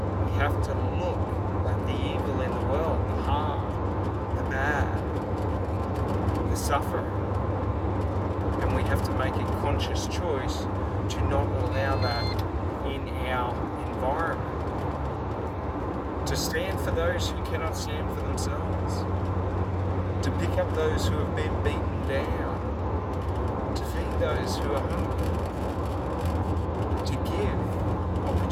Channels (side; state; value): both; identical; correlation 1.00